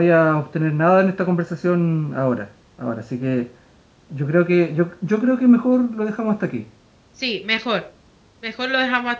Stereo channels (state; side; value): identical; both; correlation 1.00